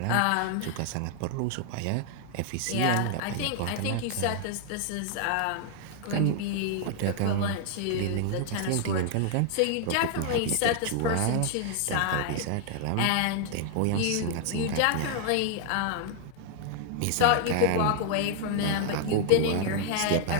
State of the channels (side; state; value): both; different; correlation 0.00